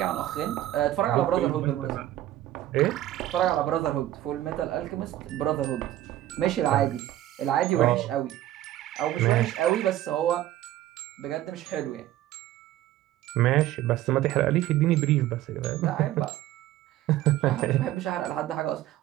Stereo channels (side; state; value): left; quieter; 13.8 dB